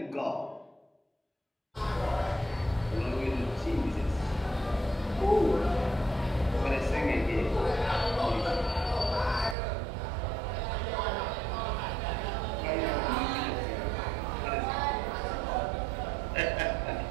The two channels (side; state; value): left; drops out; at 9.6 s